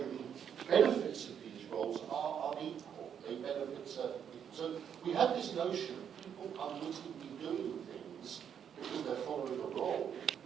the benefits of these roles are unequal. They benefit certain people. So we have this notion of people unwittingly doing things because they're following a role,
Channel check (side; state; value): left; quieter; 8.3 dB